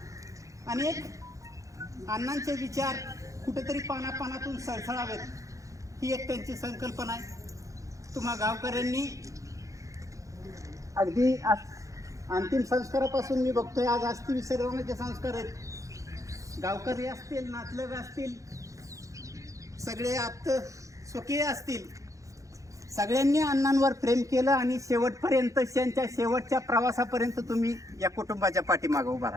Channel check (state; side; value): late; left; 0.16 ms